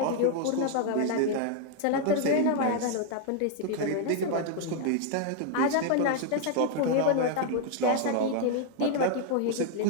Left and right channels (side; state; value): both; different; correlation 0.00